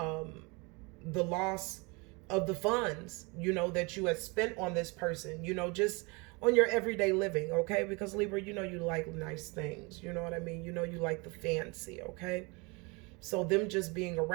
loss of the funds, that you had spent on this person, just on your everyday living, okay? Because Libra, you like nice things, you know what I mean? You like the fancy, okay? So them just being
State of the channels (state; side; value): quieter; left; 28.6 dB